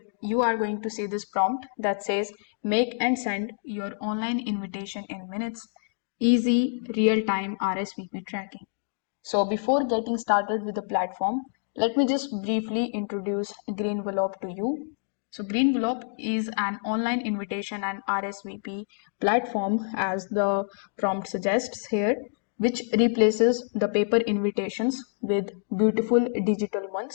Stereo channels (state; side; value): silent; right; digital silence